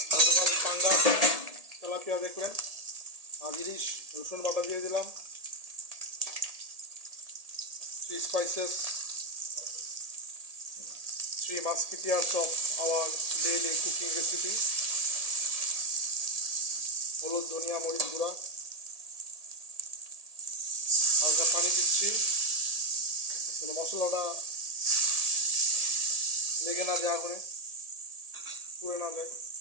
গতকাল পাঙ্গা তেলাপিয়া দেখলেন। আর ইলিশ রসুন বাটা দিয়ে দিলাম। 3 spices, 3 musketeers of our daily cooking recipe. হলুদ, ধনিয়া, মরিচ গুঁড়া, হালকা পানি দিচ্ছি মশলাটা লেগে না যায়, আগুনে পুড়ে না যায়।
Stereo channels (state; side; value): late; left; 1.8 ms